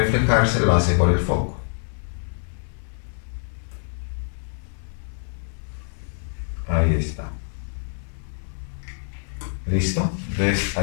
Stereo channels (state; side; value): silent; right; 62 dB below the other